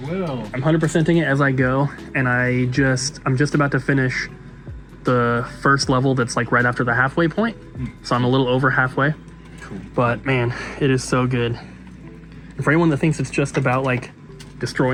I will. I'm 100%ing it as I go, and I'm just about to finish the first level that's like right after the halfway point. So I'm a little over halfway. Cool. But man, it is so good. And for anyone that thinks it's just about like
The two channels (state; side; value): identical; both; correlation 1.00